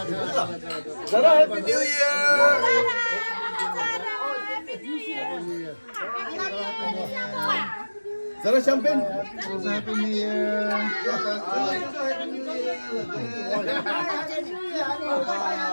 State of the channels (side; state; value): both; inverted; correlation -1.00